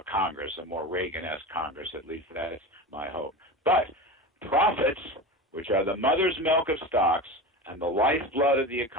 Congress, a more Reagan-esque Congress, at least that's my hope. But profits, which are the mother's milk of stocks and the lifeblood of the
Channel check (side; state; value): both; normal; correlation 0.27